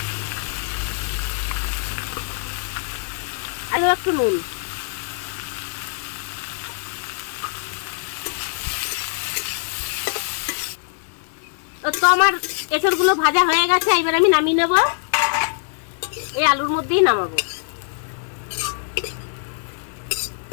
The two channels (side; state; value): right; silent; digital silence